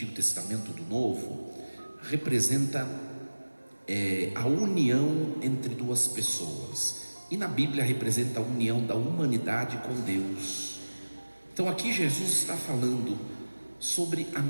Testamento ou do Novo, representa a união entre duas pessoas, e na Bíblia representa a união da humanidade com Deus. Então aqui Jesus está falando sobre a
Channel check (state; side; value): inverted; both; correlation -1.00